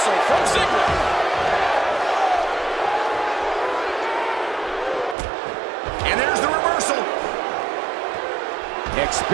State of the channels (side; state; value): left; drops out; at 5.2 s